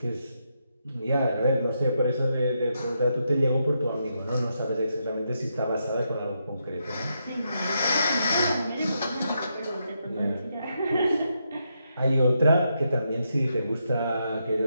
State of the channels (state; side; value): inverted; both; correlation -0.81